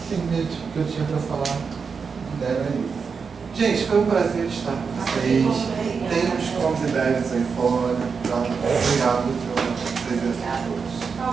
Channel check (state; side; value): quieter; left; 5.5 dB